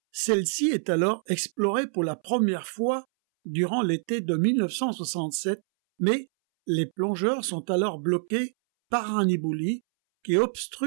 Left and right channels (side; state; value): left; silent; 61 dB below the other